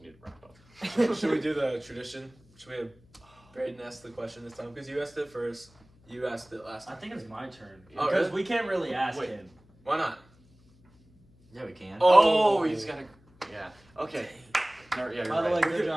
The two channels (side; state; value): left; noise; hum, 29 dB below the sound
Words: need to wrap up. Should we do the tradition? Should we have Braden ask the question this time? Because you asked it first. You asked it last I time. think it's my turn Oh, because really? we can't really ask Wait. him. Why not? Yeah, we can. Oh, he's got to. Yeah. Okay. No, yeah, you're By the right. way, good